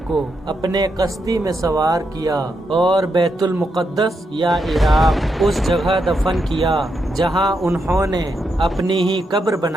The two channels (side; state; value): both; normal; correlation 0.82